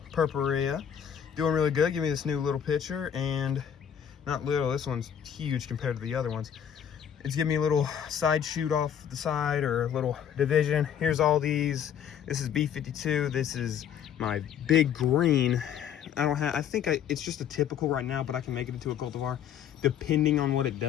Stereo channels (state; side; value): quieter; right; 8.9 dB